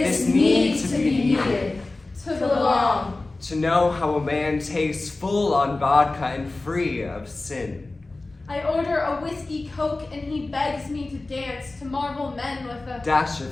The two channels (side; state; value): right; quieter; 3.2 dB